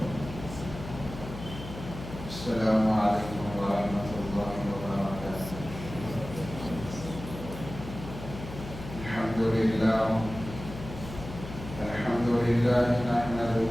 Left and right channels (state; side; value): noise; left; hum, 11 dB below the sound